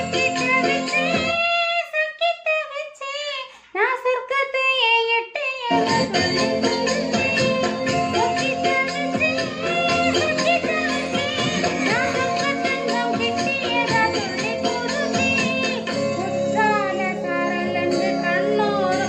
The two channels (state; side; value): identical; both; correlation 1.00